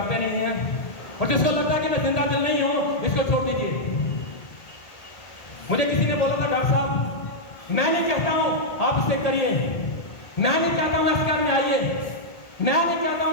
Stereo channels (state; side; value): late; right; 1.9 ms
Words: नहीं है। और जिसको लगता है कि मैं जिंदा दिल नहीं हूं, इसको छोड़ दीजिए। मुझे किसी ने बोला था डॉक्टर साहब मैं नहीं कहता हूं आप इसे करिए, मैं नहीं चाहता हूं एस्केआर में आइए, मैं नहीं चाहता